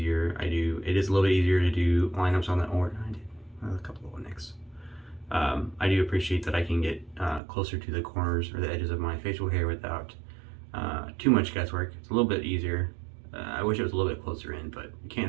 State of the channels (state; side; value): drops out; left; at 7.4 s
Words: It is a little bit easier to do lineups on the, or I did a couple of nicks. I do appreciate that I can get closer to the corners or the edges of my facial hair without too much guesswork. It's a little bit easier. I wish it was a little bit closer in, but you